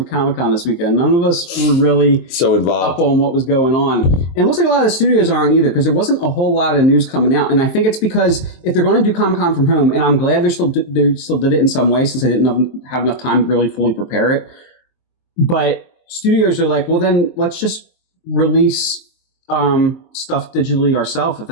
Comic-Con this weekend. None of us were really so involved up on what was going on. And it looks like a lot of the studios aren't either, because there wasn't a whole lot of news coming out. And I think it's because if they're going to do Comic-Con from home, and I'm glad they still did it in some way, since they didn't have enough time to really fully prepare it. But studios are like, well, then let's just release stuff digitally ourselves if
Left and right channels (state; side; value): late; right; 23 ms